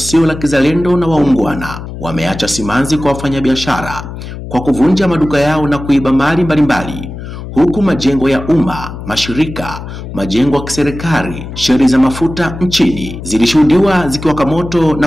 la kizalendo na waungwana wameacha simanzi kwa wafanyabiashara kwa kuvunja maduka yao na kuiba mali mbalimbali, huku majengo ya umma, mashirika, majengo ya kiserikali, sheri za mafuta nchini zilishuhudiwa zikiwaka moto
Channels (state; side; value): noise; left; hum, 10 dB below the sound